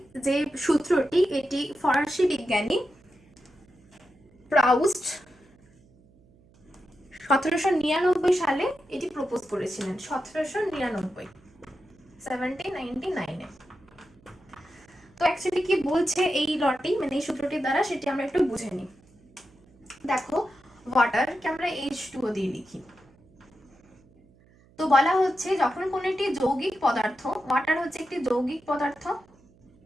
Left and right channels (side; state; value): right; noise; hum, 29 dB below the sound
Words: যে সূত্রটি, এটি ফরাসি বিজ্ঞানী প্রাউস্ট 1799 সালে এটি প্রপোজ করেছিলেন। 1799 তো অ্যাকচুয়ালি কি বলছে এই লটি মানে এই সূত্রটির দ্বারা, সেটি আমরা একটু বুঝে নিই। দেখো ওয়াটারকে আমরা H2O দিয়ে লিখি। তো বলা হচ্ছে যখন কোন একটি যৌগিক পদার্থ, ওয়াটার হচ্ছে একটি যৌগিক পদার্থ,